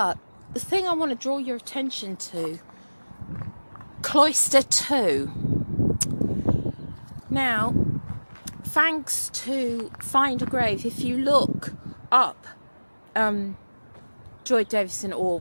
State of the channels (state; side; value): inverted; both; correlation -1.00